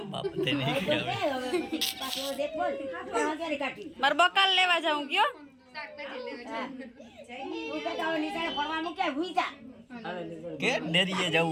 બાપ તેને પાછું દેખ બોલ ક્યારે કાઢી મારે બકાલ લેવા જાઉં કયો તું કહેતા હોય નીચાણે ફરવા મૂક્યા ભૂઈ જા કે ડેરીએ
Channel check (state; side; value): identical; both; correlation 1.00